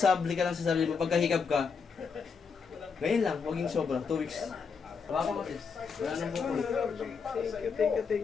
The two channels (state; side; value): quieter; right; 5.6 dB